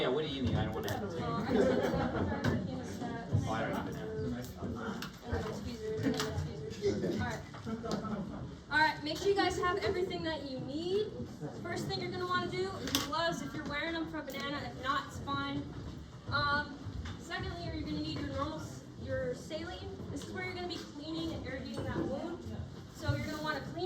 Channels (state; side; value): identical; both; correlation 1.00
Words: what do you mean? I don't want to have to. I'm just gonna Oh, I don't even have. Alright, make sure you guys have everything that you need. First thing you're gonna want to do is gloves if you're wearing them for a banana. If not, it's fine. Secondly, you're gonna need your saline. This is where you're gonna be cleaning and irrigating that wound. So you're gonna want to